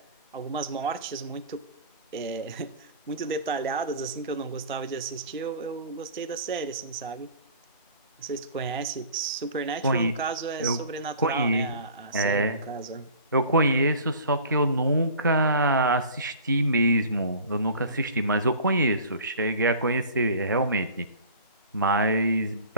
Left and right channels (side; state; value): both; inverted; correlation -0.44